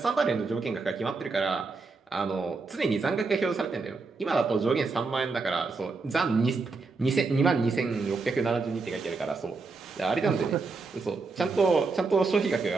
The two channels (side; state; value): left; quieter; 4.1 dB